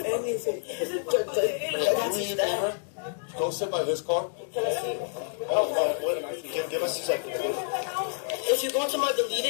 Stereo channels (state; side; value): silent; right; digital silence